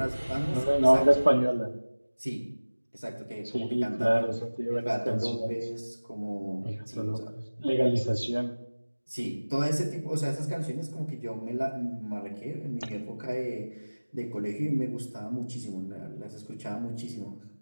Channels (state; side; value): inverted; both; correlation -1.00